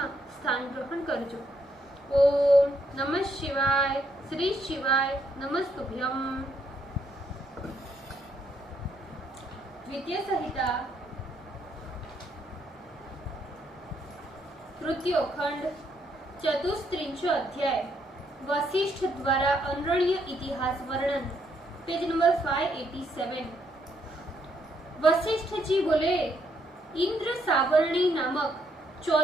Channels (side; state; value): both; normal; correlation 0.74